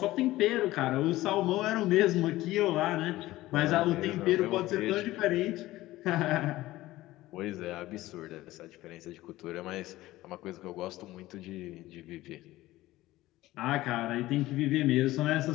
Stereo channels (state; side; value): quieter; right; 17.0 dB